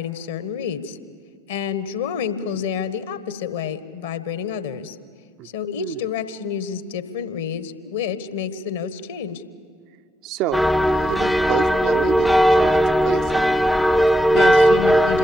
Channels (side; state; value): both; normal; correlation 0.78